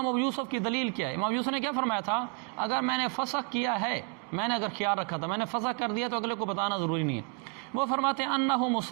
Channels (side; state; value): left; quieter; 34.9 dB